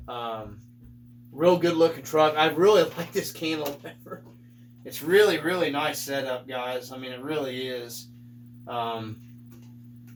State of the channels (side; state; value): both; identical; correlation 1.00